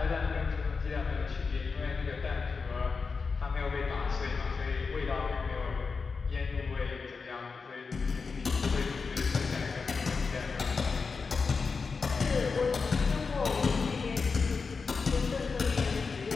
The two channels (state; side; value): quieter; right; 4.8 dB